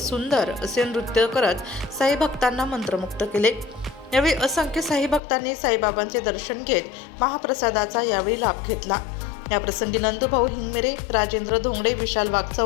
असे नृत्य करत साई भक्तांना मंत्रमुग्ध केले। यावेळी असंख्य साई भक्तांनी साईबाबांचे दर्शन घेत महाप्रसादाचा यावेळी लाभ घेतला। या प्रसंगी नंदूभाऊ हिंगमिरे, राजेंद्र धोंगडे, विशाल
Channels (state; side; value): drops out; right; at 5.2 s